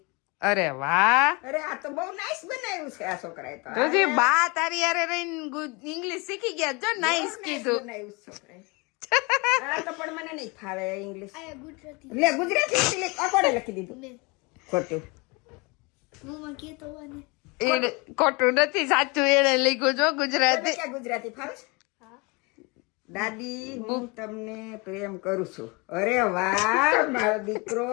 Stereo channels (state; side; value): quieter; right; 28.3 dB